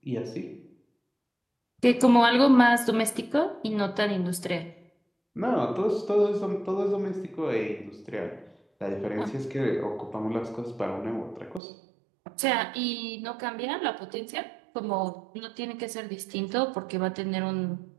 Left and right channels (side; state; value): left; drops out; at 11.6 s